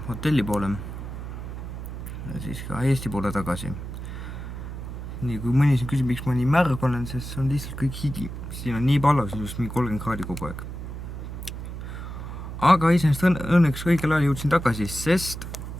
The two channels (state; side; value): noise; right; hum, 8 dB below the sound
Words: hotelli poole. Ja siis ka Eesti poole tagasi. Nii, kui mõni siin küsib, miks ma nii märg olen, sest see on lihtsalt kõik higi. Siin on nii pallas, just mingi 30 kraadi kogu aeg. Aga iseenesest õnneks õigel ajal jõudsin tagasi, sest